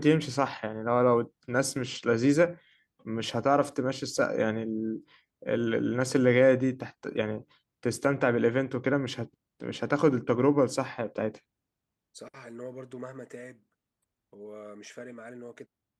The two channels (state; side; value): identical; both; correlation 1.00